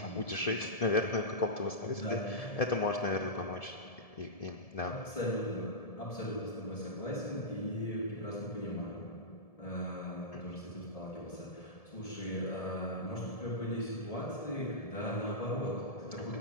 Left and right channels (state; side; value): late; right; 1.7 ms